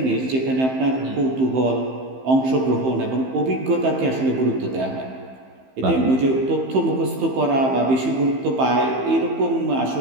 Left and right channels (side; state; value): left; late; 15 ms